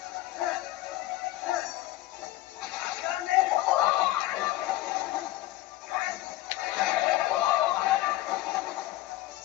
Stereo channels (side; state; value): right; quieter; 16.1 dB